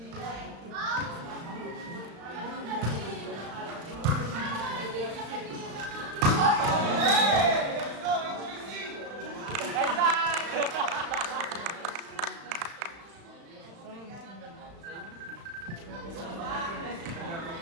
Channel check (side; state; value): left; late; 35 ms